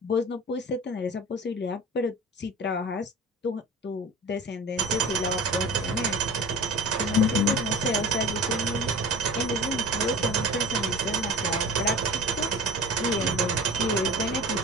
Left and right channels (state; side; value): normal; both; correlation 0.37